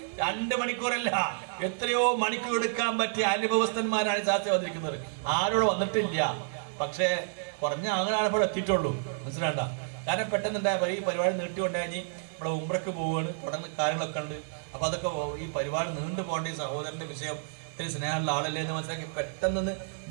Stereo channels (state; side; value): silent; left; 58 dB below the other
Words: 2 മണിക്കൂറല്ല, എത്രയോ മണിക്കൂർ എടുക്കാൻ പറ്റിയ അനുഭവസ്ഥന്മാരാണ് ശാസ്ത്രം വന്നിരിക്കുന്നത്. ആരോട് വന്നിട്ടില്ല, പക്ഷേ കുറഞ്ഞ ആളുകളാണ് ഇപ്പോൾ എത്തിയിട്ടുള്ളൂ. മനസ്സിലാണ്ട? കാരണം പെട്ടെന്നുണ്ടായ ഈ പരിപാടി നീട്ടിക്കൊണ്ടായി ഇവിടെ ഉംറയ്ക്ക് പോവുകയാണ്, തുടർന്ന് കാര്യങ്ങളൊക്കെ ഉണ്ട്. അപ്പൊ അതൊക്കെ ഈ പരിപാടി നീണ്ടു പോകേണ്ട ഈ സഹോദരന്റെ വിഷയം ഇത്തിരി സ്നേഹമുള്ള ആളല്ലേ എന്ന് മനസ്സിലാക്കി പെട്ടെന്ന്